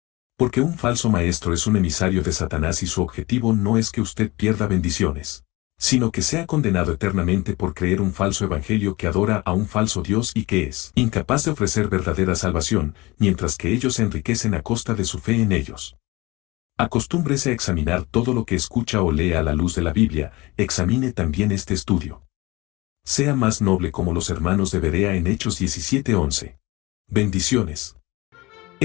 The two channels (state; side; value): quieter; right; 22.1 dB